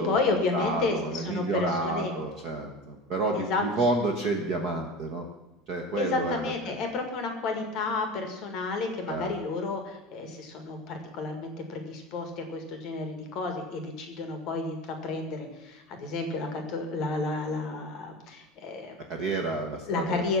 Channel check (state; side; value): normal; both; correlation 0.30